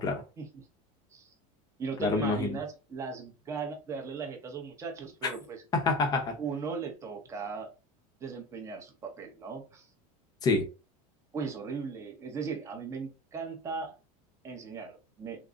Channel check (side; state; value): both; normal; correlation 0.35